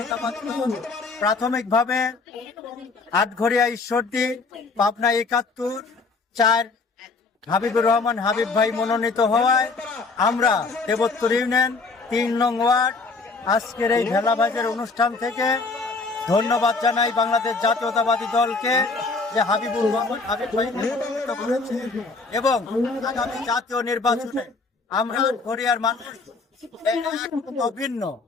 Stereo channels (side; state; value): right; quieter; 4.0 dB